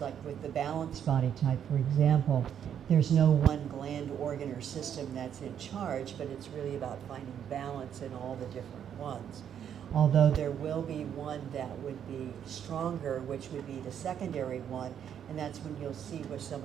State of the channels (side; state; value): left; quieter; 9.0 dB